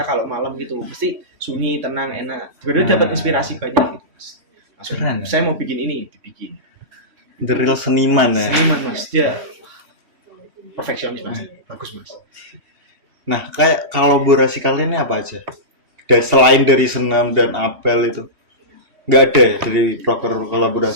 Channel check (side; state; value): left; late; 3.1 ms